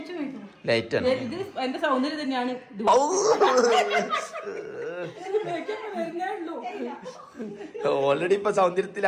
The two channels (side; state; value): both; identical; correlation 1.00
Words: ലൈറ്റ് ആണ്. എന്റെ സൗന്ദര്യം തന്നെയാണ്. ഓൾറെഡി ഇപ്പൊ